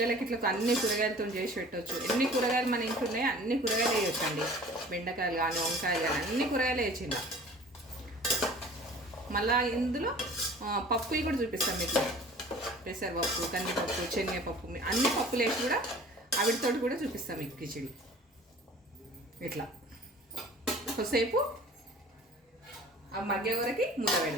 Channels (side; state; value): both; normal; correlation 0.46